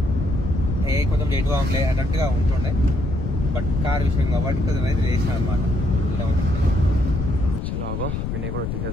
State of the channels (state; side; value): noise; left; rumble, 2 dB below the sound